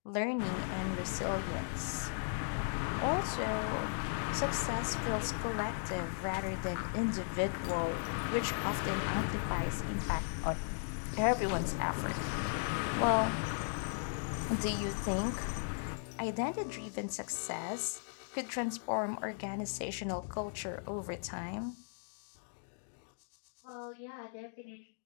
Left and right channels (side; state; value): right; silent; digital silence